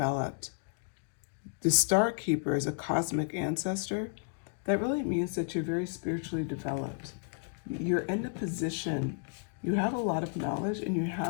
The Star Keeper is a cosmic ancestor. That really means that you're very spiritually developed. You're in a position, you have a lot of knowledge, and you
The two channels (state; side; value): silent; right; 56 dB below the other